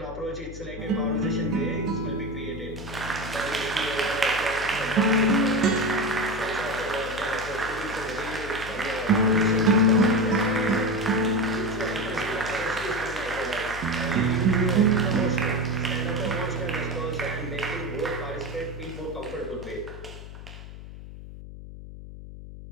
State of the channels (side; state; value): left; noise; hum, 13 dB below the sound